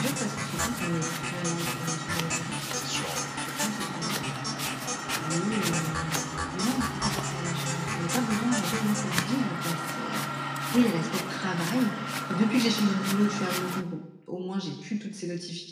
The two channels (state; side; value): identical; both; correlation 1.00